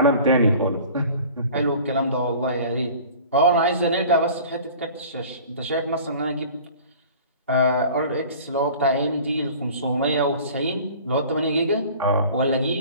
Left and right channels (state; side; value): inverted; both; correlation -0.44